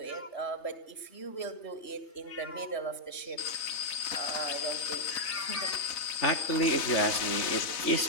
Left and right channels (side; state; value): right; late; 3.3 ms